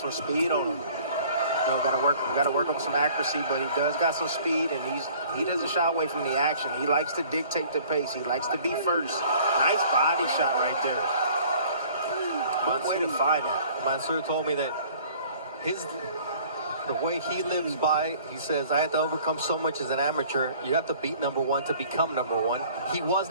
speed on him. You know, got to work on some accuracy, but he does got some speed, and he doesn't shy away from the action. He likes to dictate the pace. He likes to be first. Nice body shot right there. Good way to find that. Mansour told me that the way he lives by, he says, I had to overcome so much as an amateur. You have to beat #1 to become #1. He was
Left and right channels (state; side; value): inverted; both; correlation -0.53